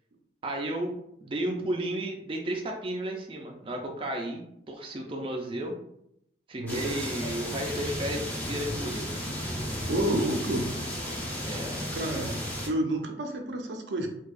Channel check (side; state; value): both; normal; correlation 0.48